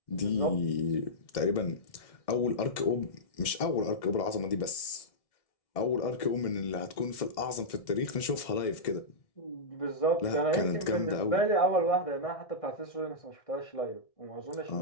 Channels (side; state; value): right; late; 1.6 ms